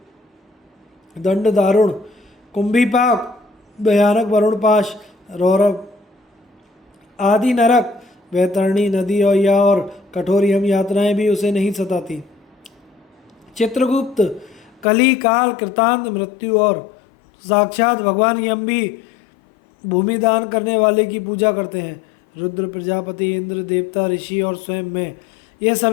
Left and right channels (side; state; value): right; drops out; at 14.9 s